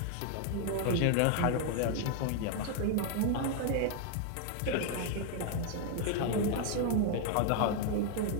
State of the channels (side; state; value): both; different; correlation 0.00